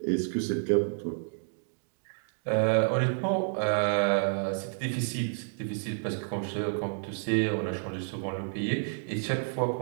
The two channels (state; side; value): silent; left; digital silence